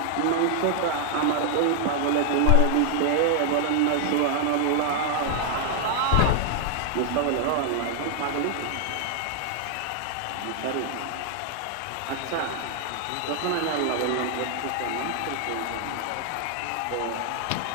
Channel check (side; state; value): both; different; correlation 0.00